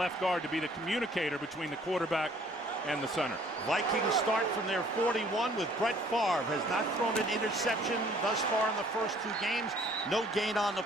guard to be the communicator between the quarterback and the center. Vikings start from their 41 with Brett Favre. Has not thrown an interception thus far in the first 2 games. No gain on the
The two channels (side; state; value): both; normal; correlation 0.57